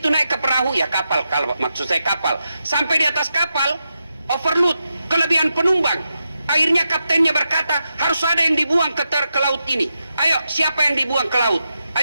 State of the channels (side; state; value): both; inverted; correlation -0.87